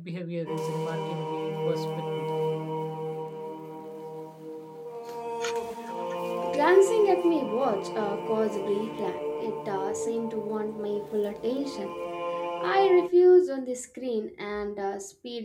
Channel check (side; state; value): both; identical; correlation 1.00